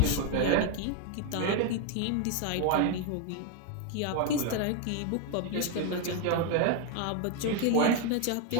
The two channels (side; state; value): both; different; correlation 0.01